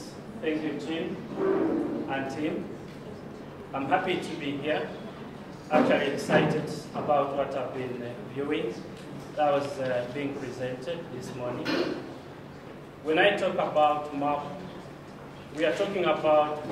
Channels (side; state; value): both; identical; correlation 1.00